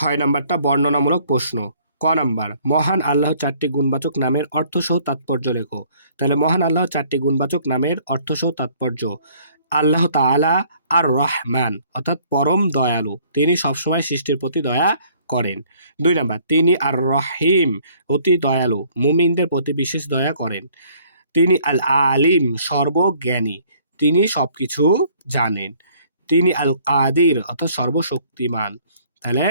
নাম্বারটা বর্ণনামূলক প্রশ্ন। ক নাম্বার মহান আল্লাহ চারটি গুণবাচক নামের অর্থসহ তাৎপর্য লেখো। তাহলে মহান আল্লাহ চারটি গুণবাচক নামের অর্থসহ তাৎপর্য, আল্লাহ তাআলা আর রহমান অর্থাৎ পরম দয়ালু, তিনি সবসময় সৃষ্টির প্রতি দয়া করেন। 2 নাম্বার তিনি আর রহিম অতি দয়ালু, মুমিনদের প্রতি বিশেষ দয়া করেন। তিনি আল আলিম সর্বজ্ঞানী, তিনি সবকিছু জানেন। তিনি আল কাদির অর্থাৎ সর্বশক্তিমান, তাহলে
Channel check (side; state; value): both; inverted; correlation -0.59